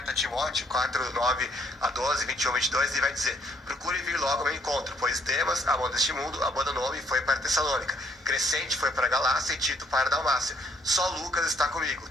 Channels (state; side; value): normal; both; correlation 0.66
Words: a Timóteo 4, 9 a 12, 21, 22, e vai dizer: procure vir logo ao meu encontro, pois Demas, amor deste mundo, abandonou-me e foi para Tessalônica. Crescente foi para Galácia e Tito para Dalmácia. Só Lucas está comigo.